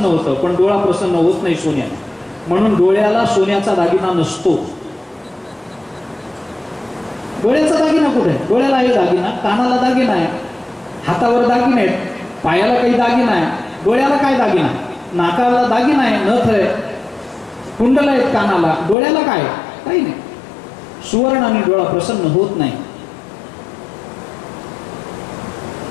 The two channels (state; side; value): drops out; right; at 18.9 s